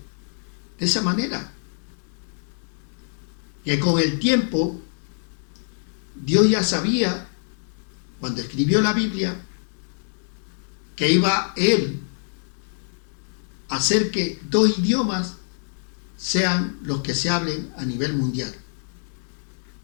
de esa manera, que con el tiempo Dios ya sabía, cuando escribió la Biblia, que iba Él a hacer que dos idiomas sean los que se hablen a nivel mundial.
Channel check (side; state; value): right; silent; digital silence